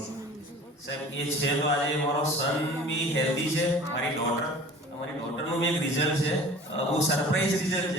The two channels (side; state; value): both; normal; correlation 0.43